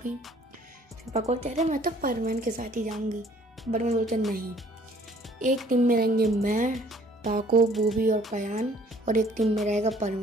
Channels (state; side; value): normal; both; correlation 0.57